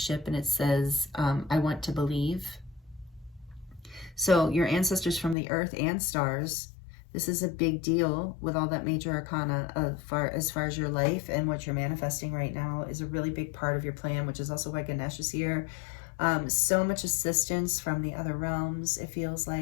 and it says, I want to believe. So your ancestors from the earth and stars, this is a big deal with all that major arcana as far as your life and what you're manifesting right now is a really big part of your plan, which is also why Ganesh is here. So much assistance from the other realms, it feels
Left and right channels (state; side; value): drops out; right; at 5.4 s